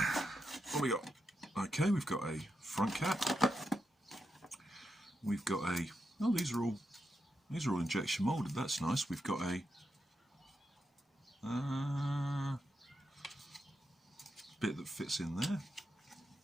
What we got? Okay, we've got a front cap. We've got a, oh, these are all injection molded. That's nice. We've got a bit that fits in there.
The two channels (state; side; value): normal; both; correlation 0.85